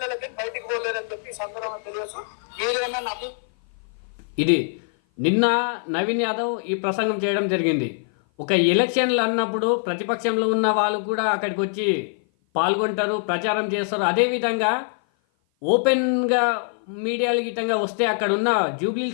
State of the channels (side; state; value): right; silent; 56 dB below the other